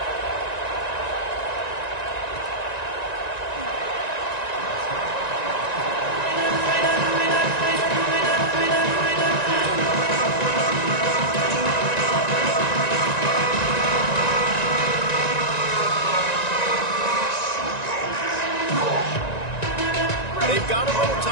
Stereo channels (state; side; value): late; right; 1.9 ms